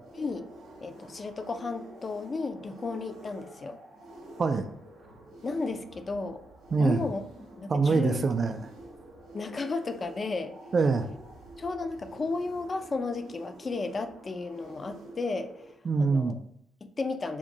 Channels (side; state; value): both; normal; correlation 0.85